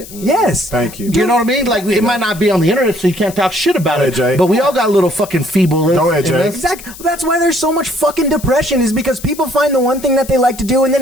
Yes. thank you. You know what I mean? Like it might not be on the internet, so you can't talk shit about it. Jay. But we all got little fucking feeble. Go ahead, Jay. Exactly. That's why there's so much fucking depression, is because people find the one thing that they like to do and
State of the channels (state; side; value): noise; left; hiss, 16 dB below the sound